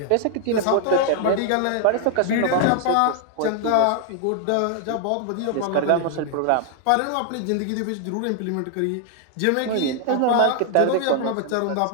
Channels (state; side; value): different; both; correlation 0.00